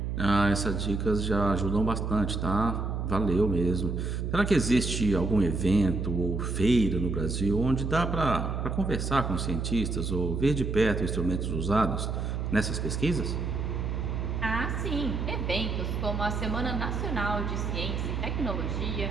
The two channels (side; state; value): right; noise; hum, 2 dB below the sound